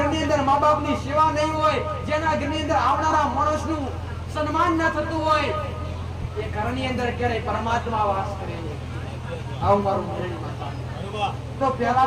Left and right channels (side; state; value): both; identical; correlation 1.00